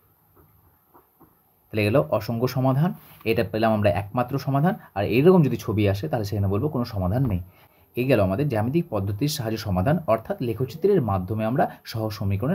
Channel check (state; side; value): identical; both; correlation 1.00